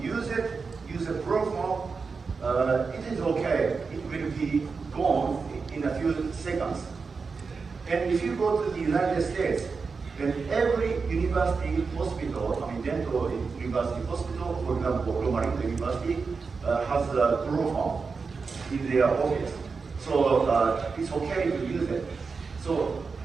use a chloroform, it is okay. It will be gone in a few seconds. And if you go to the United States, then every university hospital, dental university hospital, for example, Loma Linda University, has a chloroform in their office. So it's okay to use it. So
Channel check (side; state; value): left; quieter; 4.8 dB